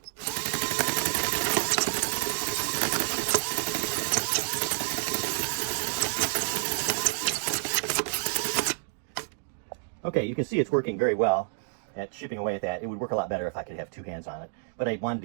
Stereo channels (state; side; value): silent; left; digital silence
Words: Okay, you can see it's working very well at chipping away at that. It would work a lot better if I could have two hands on it, but I wanted